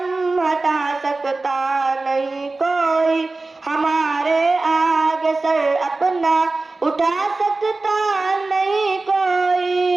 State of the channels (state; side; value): quieter; left; 3.4 dB